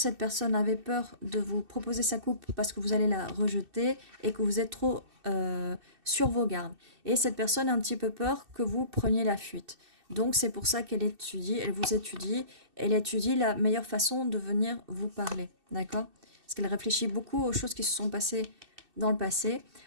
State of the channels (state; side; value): late; left; 2.6 ms